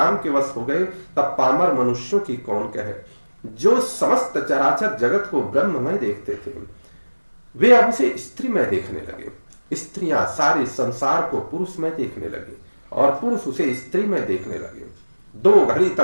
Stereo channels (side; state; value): both; inverted; correlation -1.00